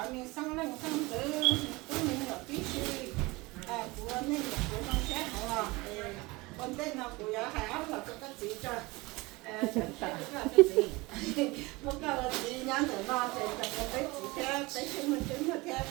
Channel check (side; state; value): left; quieter; 23.1 dB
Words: miếng xăng lên xăng tử tôi miếng là tí xì con tên nó của hai áo là có cái gì cho cái gì một cái là gì nhắn từ nó thì cái gì theo cái chứng minh theo